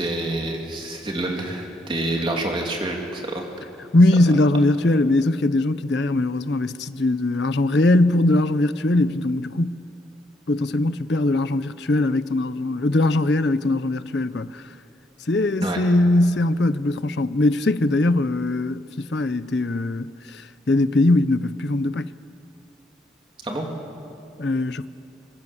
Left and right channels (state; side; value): normal; both; correlation 0.75